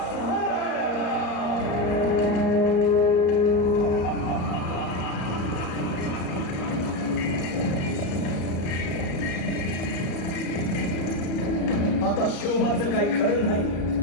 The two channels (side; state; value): right; late; 34 ms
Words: आता शिवबाचं काही खरं नाही.